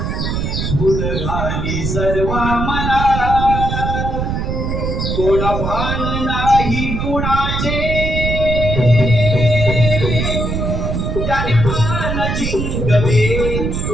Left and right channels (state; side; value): noise; right; rumble, 2 dB below the sound